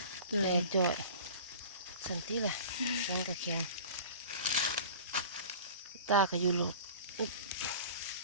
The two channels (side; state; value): both; inverted; correlation -0.39